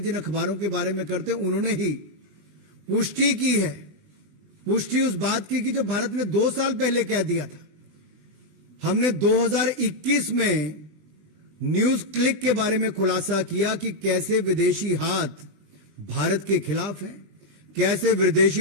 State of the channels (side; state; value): left; late; 20 ms